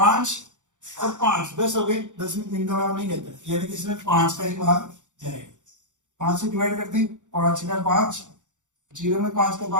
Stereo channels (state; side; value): late; left; 0.86 ms